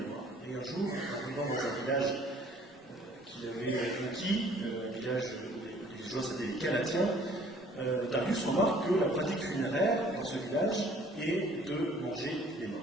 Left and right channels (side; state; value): both; normal; correlation 0.56